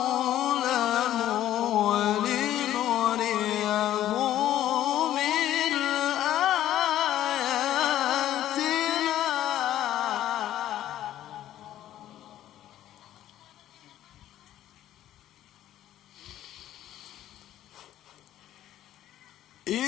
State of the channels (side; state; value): right; quieter; 12.6 dB